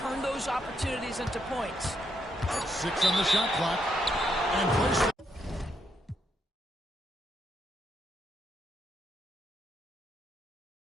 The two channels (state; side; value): normal; both; correlation 0.78